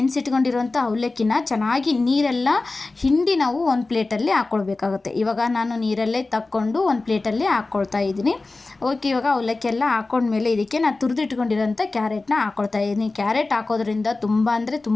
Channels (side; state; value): right; quieter; 3.4 dB